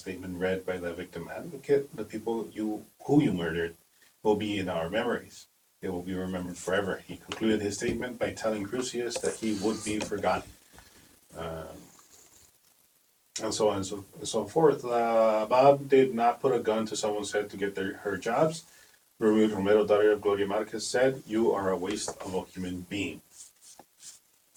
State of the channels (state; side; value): identical; both; correlation 1.00